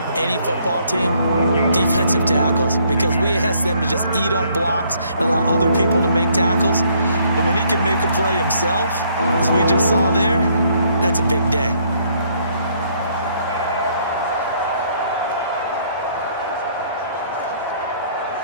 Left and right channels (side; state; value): both; inverted; correlation -0.66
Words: any football team, defensive tackles, because we ask them to just eat up blocks and allow other people to make tackles. But when he can make a play himself, as we just saw there, that's a big day.